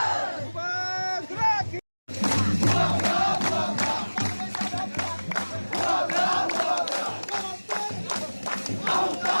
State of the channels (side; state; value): both; inverted; correlation -1.00